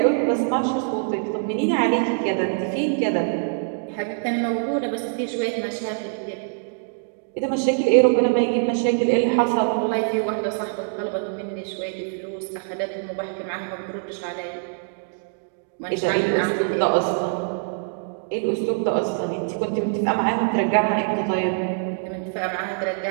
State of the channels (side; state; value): left; silent; digital silence